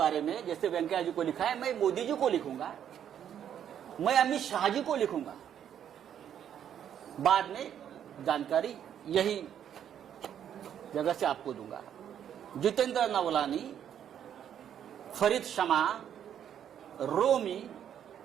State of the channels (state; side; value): quieter; left; 9.5 dB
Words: में, जैसे वेंकैया जी को लिखा है, मैं मोदी जी को लिखूंगा, मैं अमित शाह जी को लिखूंगा, बाद में जानकारी यही जगह से आपको दूंगा। जितेंद्र नवलानी, फरीद शमा, रोमी